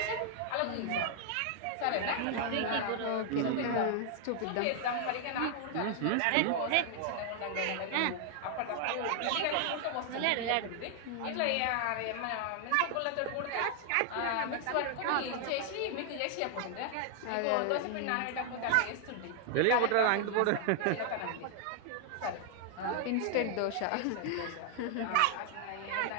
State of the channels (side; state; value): both; different; correlation 0.00